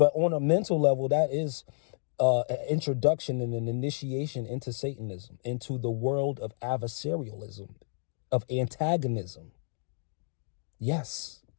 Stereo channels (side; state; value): right; silent; digital silence